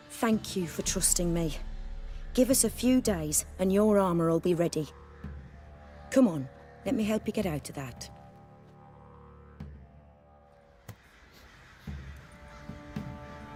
Thank you for trusting me. Give us a few days and your armour will be ready. Come on, let me help you get out of that.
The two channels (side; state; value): both; identical; correlation 1.00